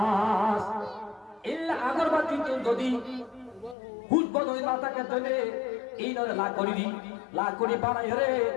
ইল্লা আগরবাতি যদি হুজ বলে মাথাকে ধরে এই নরে লা করি বানাই রে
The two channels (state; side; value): drops out; right; at 3.8 s